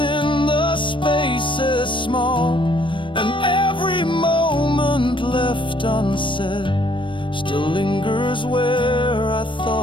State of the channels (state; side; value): late; right; 0.24 ms